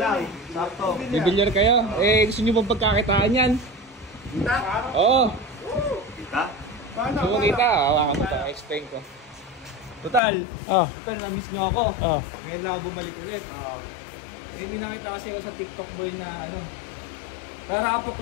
lang. Sakto. Bibilyar kayo? Gusto nyo bang pagkakitaan yan? Kita? Oo. Kita? Gusto mo kita? Hawakan mo ito. Explain ko. Total, na-miss nyo ako. Ngayon lang ako bumalik ulit. May nakita kasi ako sa TikTok boy na ano, rarapok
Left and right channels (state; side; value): drops out; right; at 10.2 s